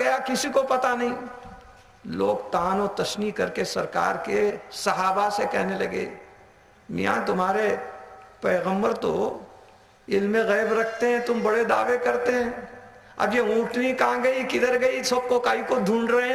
کسی کو پتا نہیں۔ لوگ طعن و تشنیع کر کے سرکار کے صحابہ سے کہنے لگے، میاں تمہارے پیغمبر تو علم غیب رکھتے ہیں، تم بڑے دعوے کرتے ہیں، اب یہ اونٹنی کہاں گئی، کدھر گئی، سب کو کائی کو ڈھونڈ رہے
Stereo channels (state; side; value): identical; both; correlation 1.00